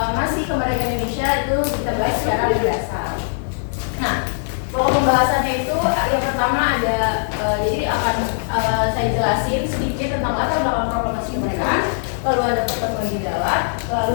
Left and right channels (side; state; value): right; silent; 61 dB below the other